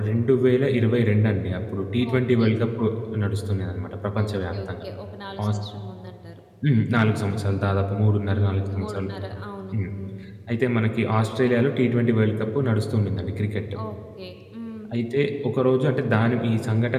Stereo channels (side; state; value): both; identical; correlation 1.00